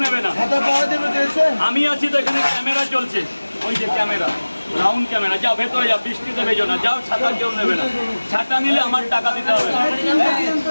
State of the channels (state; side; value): inverted; both; correlation -1.00